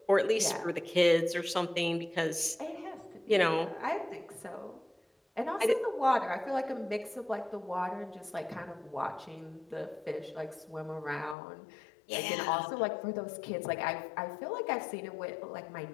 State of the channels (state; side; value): drops out; right; at 11.4 s